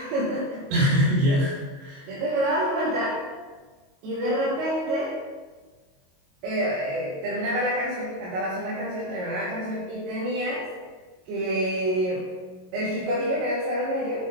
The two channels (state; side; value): late; left; 22 ms